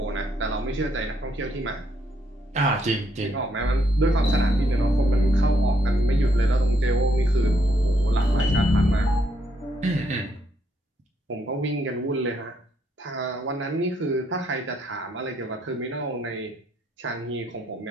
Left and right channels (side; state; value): both; normal; correlation 0.74